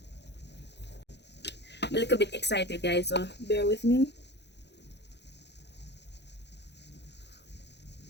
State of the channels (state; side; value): late; right; 0.50 ms